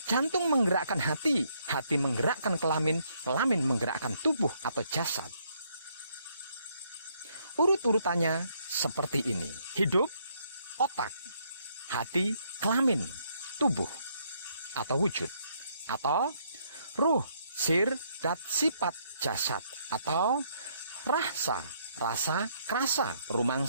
jantung menggerakkan hati, hati menggerakkan kelamin, kelamin menggerakkan tubuh atau jasad. Urut-urutannya seperti ini: hidup, otak, hati, kelamin, tubuh atau wujud, atau ruh, sir, dat, sifat, jasad, atau rasa, rasa, krasa,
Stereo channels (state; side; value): inverted; both; correlation -0.70